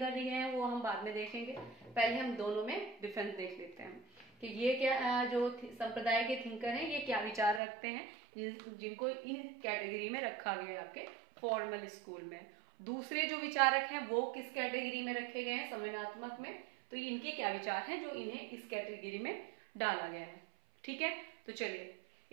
दिए हैं वो हम बाद में देखेंगे। पहले हम दोनों में डिफरेंस देख लेते हैं कि ये क्या जो संप्रदाय के थिंकर हैं ये क्या विचार रखते हैं, जिनको इन कैटेगरी में रखा गया है आपके फॉर्मल स्कूल में। दूसरे जो विचारक हैं वो किस कैटेगरी में रखे गए हैं, संवेदनात्मक में। तो इनके क्या विचार हैं जो इन्हें इस कैटेगरी में डाला गया है, ठीक है। तो चलिए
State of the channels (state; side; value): drops out; left; at 7.6 s